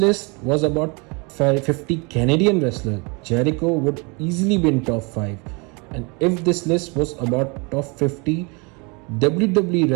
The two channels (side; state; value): left; quieter; 30.5 dB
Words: was about 50 Canadian wrestlers, Jericho would easily be in top 5. And if this list was about top 50 WWE